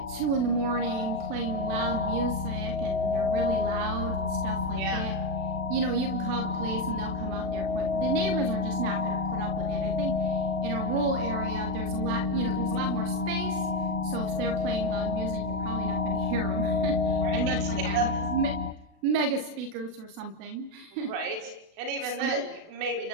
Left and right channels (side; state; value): left; late; 36 ms